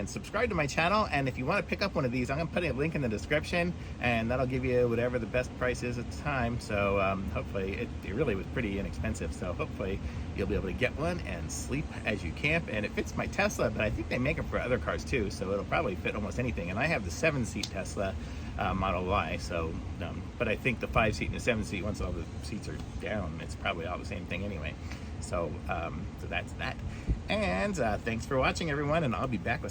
subscribe to my channel. And if you want to pick up one of these, I'm gonna put a link in the description, and that'll give you whatever the best price is at the time. So hopefully it really was pretty inexpensive. So hopefully you'll be able to get one and sleep as you camp. And it fits my Tesla, but I think they make them for other cars too. So it'll probably fit almost anything. And I have the 7-seat Tesla Model Y. So, but I think the 5-seat and the 7-seat, once all the seats are down, it's probably all the same thing anyway. So, so that's that. And thanks for watching, everyone, and I'll be back with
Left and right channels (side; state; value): both; identical; correlation 1.00